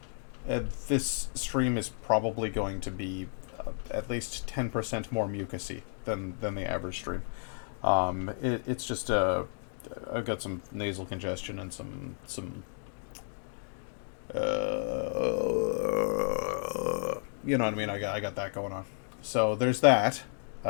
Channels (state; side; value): silent; right; digital silence